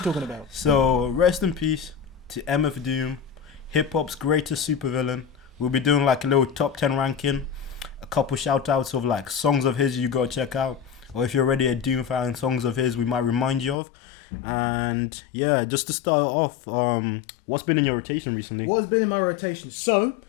talking about? So, rest in peace to MF Doom, hip-hop's greatest supervillain. We'll be doing like a little top 10 ranking, a couple shout outs of like songs of his you gotta check out, or if you're already a Doom fan, songs of his we might remind you of. And yeah, just to start off, what's been in your rotation recently? What has been in my rotation? So,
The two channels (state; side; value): drops out; right; at 13.8 s